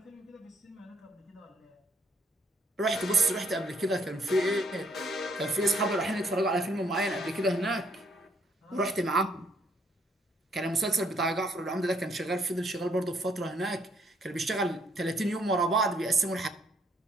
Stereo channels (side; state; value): both; normal; correlation 0.69